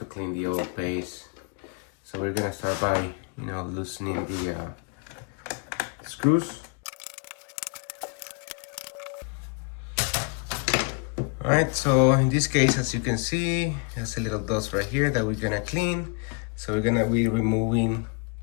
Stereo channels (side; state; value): right; quieter; 33.7 dB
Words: clean the old paste. So we're gonna start by loosening the screws. Alright, so in this case, as you can see, there's a little dust right here that we're gonna clean. So we're gonna be removing